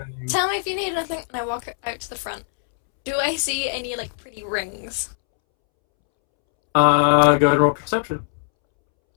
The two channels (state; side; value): silent; right; 65 dB below the other